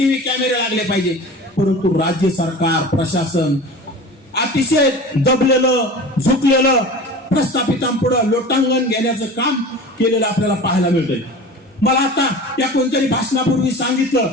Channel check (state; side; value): normal; both; correlation 0.36